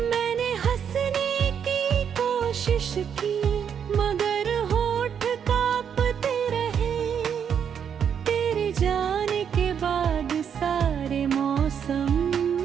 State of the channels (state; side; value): quieter; left; 7.9 dB